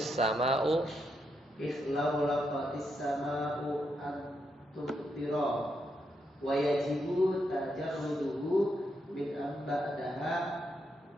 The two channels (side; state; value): both; normal; correlation 0.81